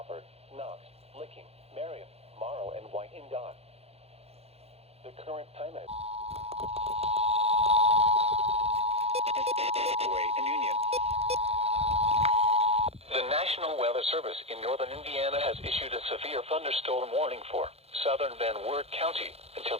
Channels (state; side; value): late; left; 0.29 ms